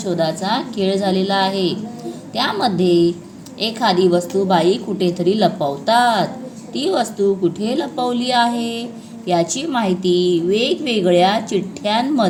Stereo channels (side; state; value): both; identical; correlation 1.00